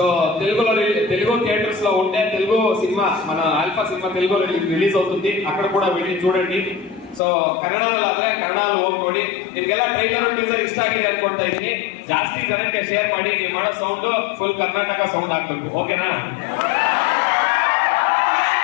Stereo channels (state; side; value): drops out; right; at 7.2 s